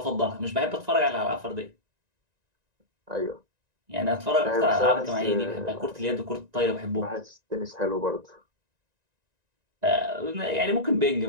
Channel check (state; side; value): late; left; 1.9 ms